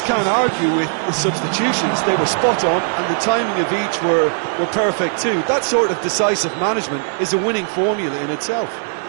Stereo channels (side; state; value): left; silent; digital silence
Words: can't argue with the substitutions. They were spot on, and the timing of each were perfect too. That sort of decisive management is a winning formula in itself.